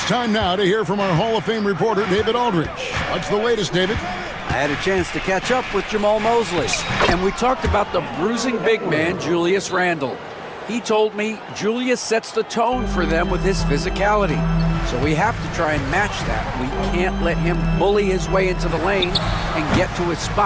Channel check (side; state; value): both; identical; correlation 1.00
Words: time now to hear from our Hall of Fame reporter, David Aldridge. What's the latest, David? I had a chance to catch up with Jamal Mosley, and we talked about the bruising big man, Julius Randle. He told me Julius sets the tone for them with his physicality. So we have to try and match that. We can't let him bully his way into the lane and get to his